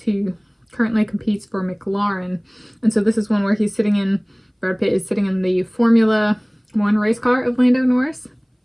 currently competes for McLaren. And so this is one where he's sitting in, Brad Pitt is sitting in the Formula 1 race car of Lando Norris.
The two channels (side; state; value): both; identical; correlation 1.00